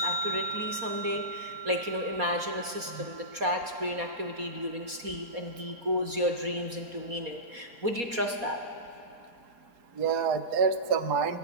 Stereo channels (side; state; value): left; late; 4.2 ms